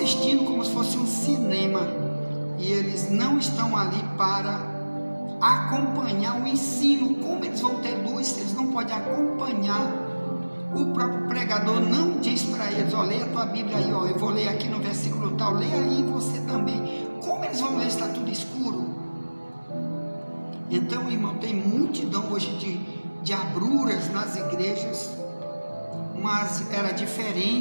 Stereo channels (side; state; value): both; inverted; correlation -1.00